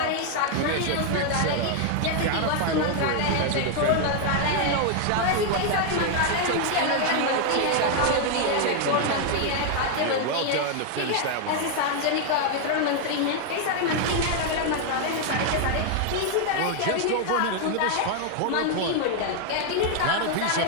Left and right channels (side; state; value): both; different; correlation 0.00